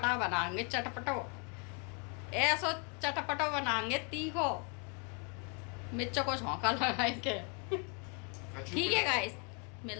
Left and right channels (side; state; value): right; quieter; 34.5 dB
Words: बनाएंगे, चटपटो ऐसो चटपटो बनाएंगे, तीखो मिर्चों को झोंका लगाएंगे। ठीक है गाइस,